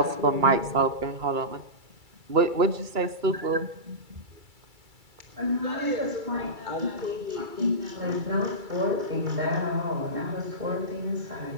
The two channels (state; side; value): late; left; 2.3 ms